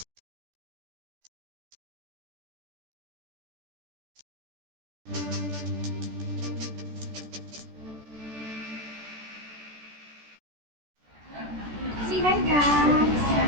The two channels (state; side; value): late; left; 14 ms